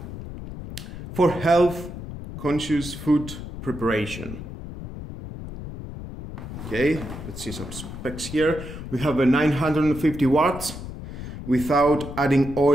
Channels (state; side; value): noise; left; rumble, 10 dB below the sound